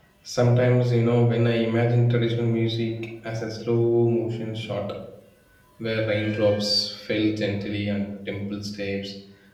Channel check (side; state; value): both; identical; correlation 1.00